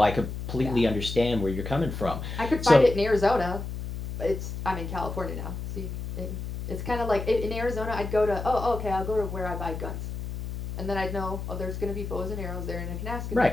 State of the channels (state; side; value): noise; left; hum, 6 dB below the sound